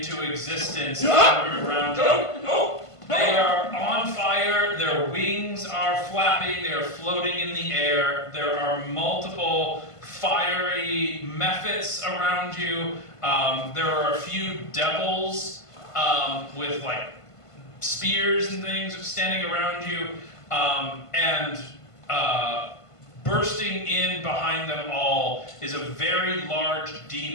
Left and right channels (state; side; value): late; right; 1.5 ms